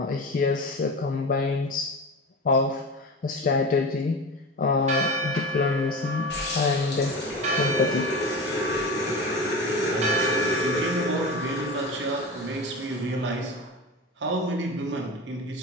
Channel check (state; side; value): normal; both; correlation 0.28